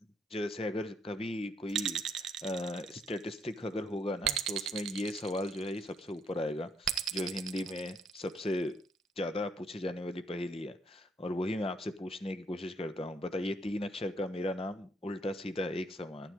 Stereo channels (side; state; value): both; normal; correlation 0.72